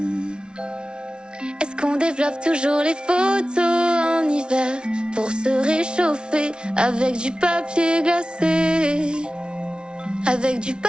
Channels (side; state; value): left; late; 0.056 ms